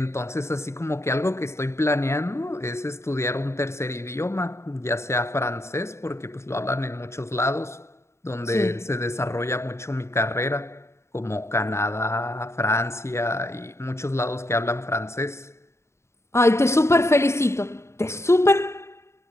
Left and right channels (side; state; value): right; late; 0.13 ms